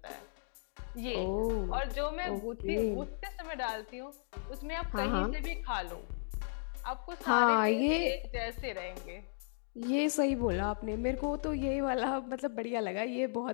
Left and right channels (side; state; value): right; silent; digital silence